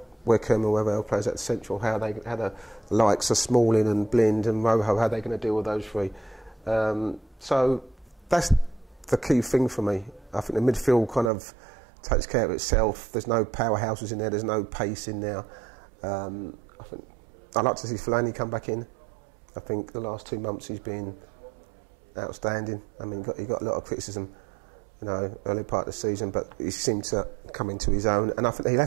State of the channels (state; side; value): drops out; left; at 11.3 s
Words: Wickham, whoever else plays at central, how the likes of Smalling and Blind and Rojo, how they're going to deal with those three. So that's the key thing for me. I think the midfield kind of takes care of itself. There's no powerhouses in there. There's no pace in there. I think I'd like to see Fellaini come back in. I think the last 2 months he's been outstanding. I mean, he got a lot of criticism, you know, early part of the season, but he seemed to come into his own. And I think